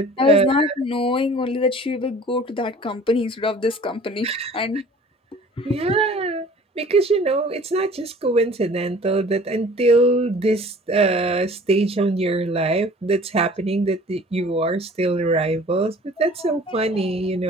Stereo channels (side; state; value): both; normal; correlation 0.48